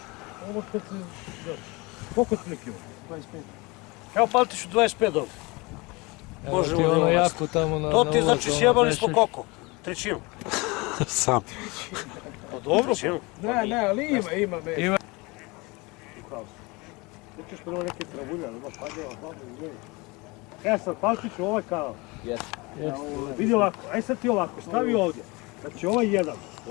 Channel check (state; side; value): quieter; right; 25.4 dB